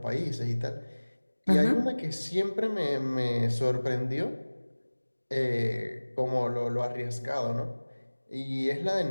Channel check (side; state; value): both; inverted; correlation -1.00